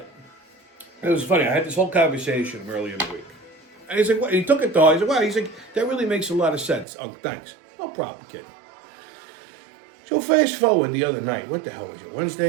it was funny. I had this whole conversation earlier in the week. And he's like, what? He took it to heart. He's like, wow. He's like, that really makes a lot of sense. Oh, thanks. No problem, kid. So fast forward the other night. What the hell was it?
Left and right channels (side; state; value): left; drops out; at 6.9 s